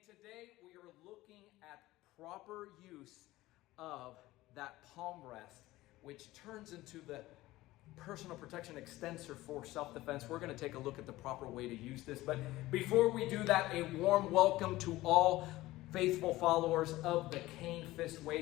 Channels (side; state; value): right; quieter; 17.6 dB